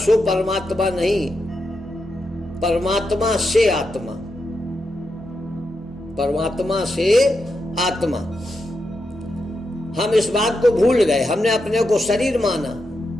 परमात्मा नहीं, परमात्मा से आत्मा, परमात्मा से आत्मा। हम इस बात को भूल गए, हमने अपने को शरीर माना।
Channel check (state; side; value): normal; both; correlation 0.85